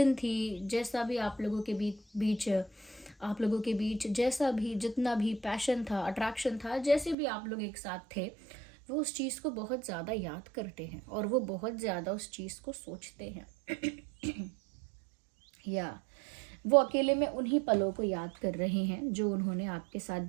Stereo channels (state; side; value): drops out; left; at 7.2 s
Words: थी, जैसा भी आप लोगों के बीच जैसा भी जितना भी पैशन था, अट्रैक्शन था, जैसे भी आप लोग एक साथ थे, वो उस चीज़ को बहुत ज़्यादा याद करते हैं और वो बहुत ज़्यादा उस चीज़ को सोचते हैं। या वो अकेले में उन्हीं पलों को याद कर रहे हैं जो उन्होंने आपके साथ